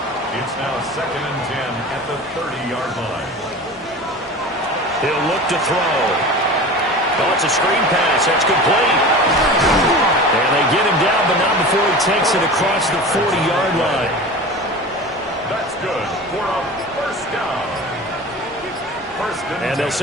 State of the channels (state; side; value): normal; both; correlation 0.34